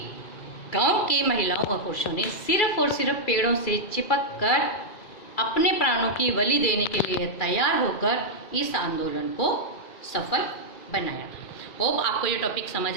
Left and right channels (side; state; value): right; late; 2.4 ms